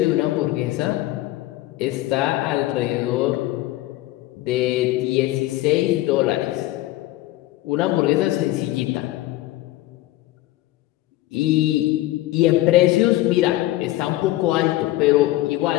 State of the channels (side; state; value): right; quieter; 16.5 dB